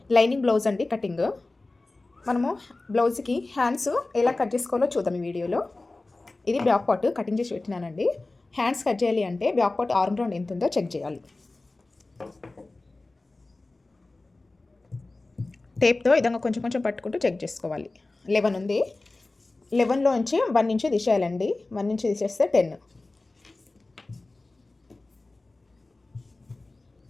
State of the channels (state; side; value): quieter; right; 3.1 dB